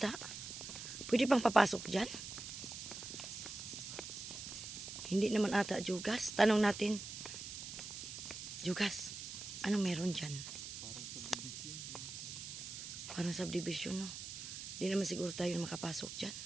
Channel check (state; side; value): noise; right; hiss, 8 dB below the sound